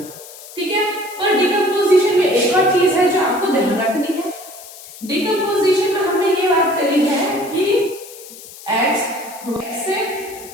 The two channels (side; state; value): left; noise; hiss, 17 dB below the sound